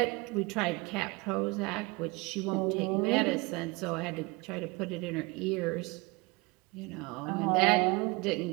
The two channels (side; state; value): left; quieter; 25.9 dB